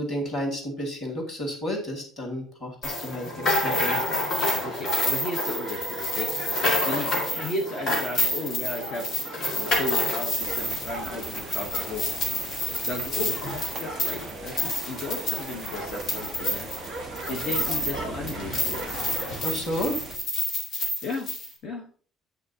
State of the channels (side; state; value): both; normal; correlation 0.54